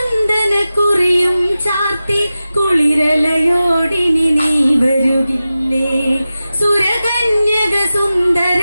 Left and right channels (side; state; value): both; inverted; correlation -0.94